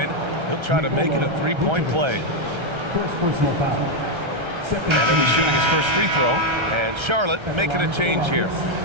He'll try to make it a three-point play. First personal foul. And he'll be shooting his first free throw. And Charlotte making a change here.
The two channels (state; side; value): late; left; 1.3 ms